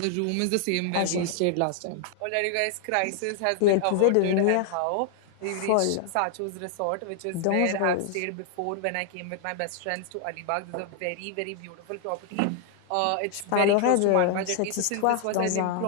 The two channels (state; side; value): different; both; correlation 0.00